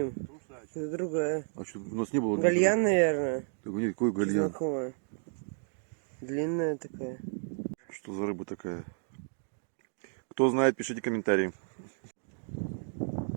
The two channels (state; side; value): silent; left; 56 dB below the other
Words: это другая. А что, у нас не было? Гальян, наверное. Так, нет, какой гальян? Знакомая. Длинная такая. Что за рыба такая? Кто знает, пишите комментарии.